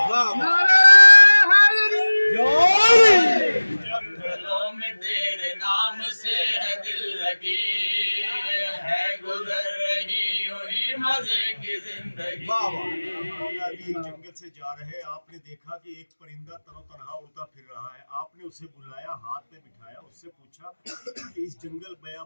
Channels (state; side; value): inverted; both; correlation -1.00